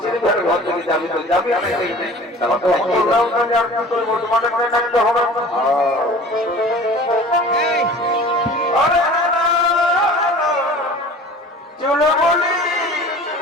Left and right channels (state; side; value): normal; both; correlation 0.43